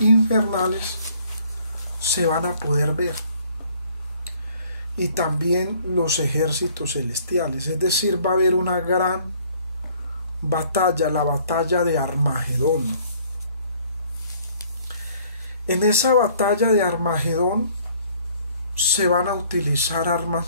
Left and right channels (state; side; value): inverted; both; correlation -0.58